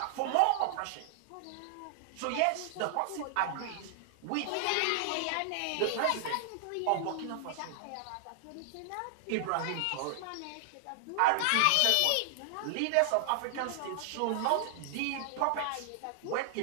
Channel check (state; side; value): different; both; correlation -0.01